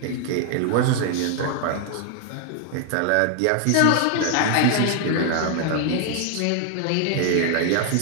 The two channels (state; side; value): different; both; correlation 0.00